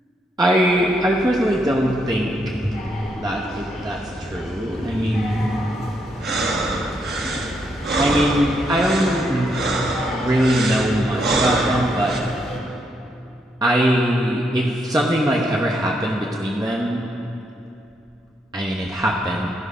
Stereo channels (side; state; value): both; normal; correlation 0.77